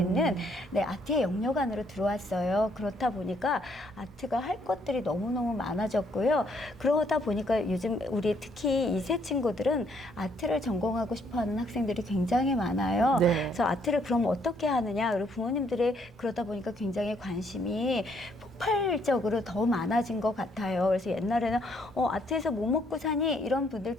아트의 영역 안으로 들어왔어요. 그렇다 보니까 아트가 할 것들이 너무너무 많아졌고요. 그러다 보니까 요즘 우리 특히 2세 친구들은 아트를 전공하고 싶어하는 학생들이 굉장히 많아요. 네. 그래서 아트를 그럼 어떻게 하느냐, 그리고 부모님들이 그러다 보니까 굉장히 관심이 폭발적으로 더 많아진 것 같아요. 그래서 옛날에는 아트에서 뭐 먹고 사니 이런 분들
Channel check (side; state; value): both; normal; correlation 0.69